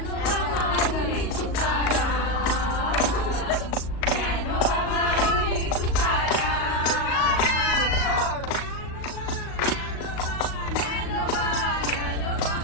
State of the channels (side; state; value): right; late; 38 ms